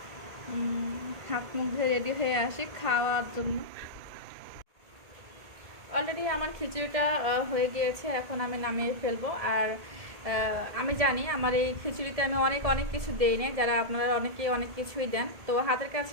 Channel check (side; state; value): left; late; 1.7 ms